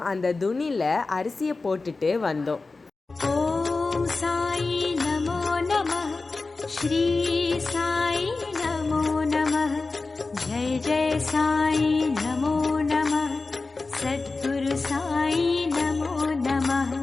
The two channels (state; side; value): quieter; right; 3.7 dB